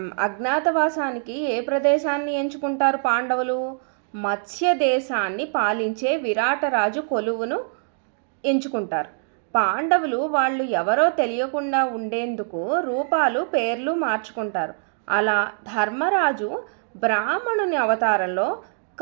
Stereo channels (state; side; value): silent; left; digital silence